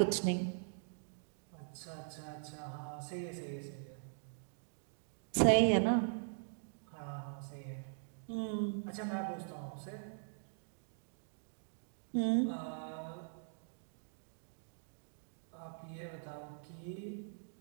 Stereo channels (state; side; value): silent; left; digital silence